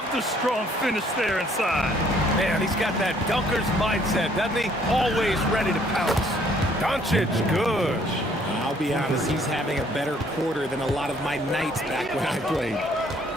the strong finish there inside. Man, he's got that dunker's mindset, doesn't he? Always ready to pounce. Doncic, good. I'll be honest, he's having a better quarter than a lot of my nights back when I played.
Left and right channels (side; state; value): both; normal; correlation 0.62